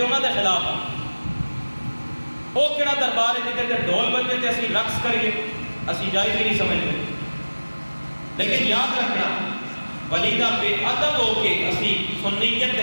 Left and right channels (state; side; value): inverted; both; correlation -1.00